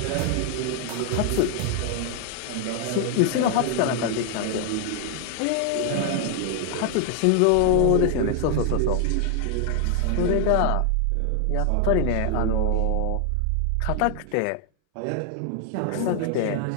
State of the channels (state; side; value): different; both; correlation 0.00